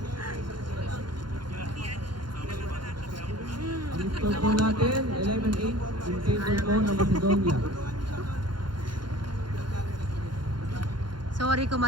Ang score po natin, 11-8 in favor po ng Macedonia. Sorry kung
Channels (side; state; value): left; late; 0.71 ms